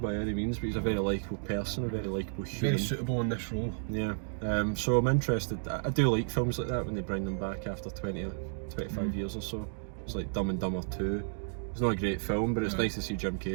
any means, but he's a very likeable person, a very likeable human. Very suitable in this role. Yeah, so I'm interested. I do like films like that when they bring them back after 20 or 25 years or so. It's like Dumb and Dumber 2. It's not a great film, but it's nice to see Jim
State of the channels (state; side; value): silent; left; digital silence